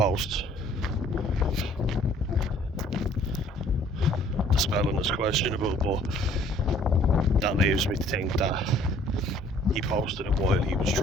The spelling is questionable, but that leaves me to think that he posted it while he was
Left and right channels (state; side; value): normal; both; correlation 0.57